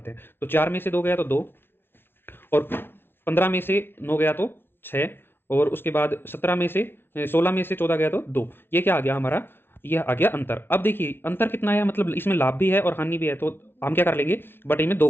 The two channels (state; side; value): late; right; 0.11 ms